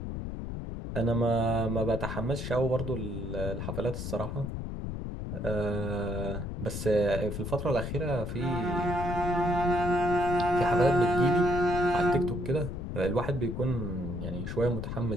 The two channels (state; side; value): noise; left; rumble, 5 dB below the sound